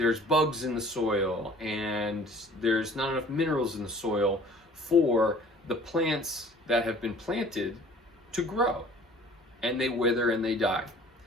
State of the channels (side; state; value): both; normal; correlation 0.50